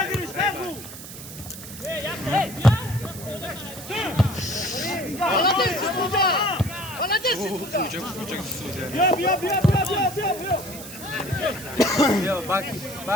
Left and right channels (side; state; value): right; noise; hiss, 13 dB below the sound